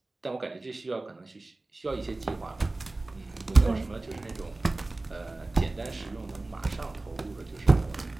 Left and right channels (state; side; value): quieter; left; 3.0 dB